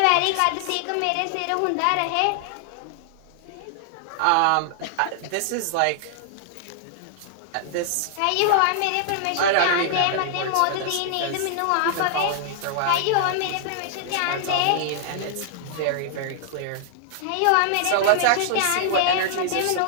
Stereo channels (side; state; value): both; different; correlation -0.01